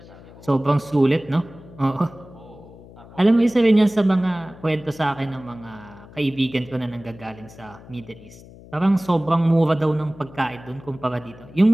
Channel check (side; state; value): left; noise; hum, 20 dB below the sound